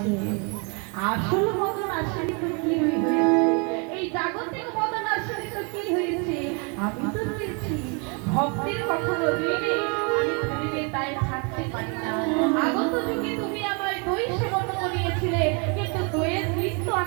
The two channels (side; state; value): left; quieter; 34.5 dB